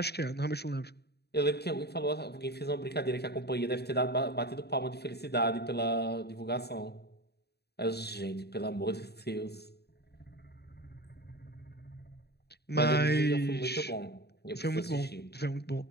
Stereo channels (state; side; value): late; right; 0.48 ms